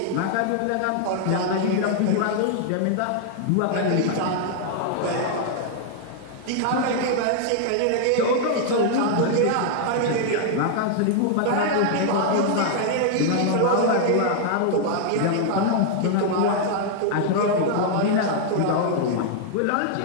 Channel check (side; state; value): both; different; correlation -0.01